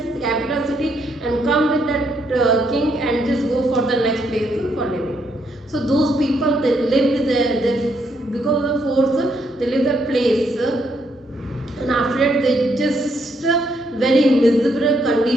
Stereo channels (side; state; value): both; normal; correlation 0.75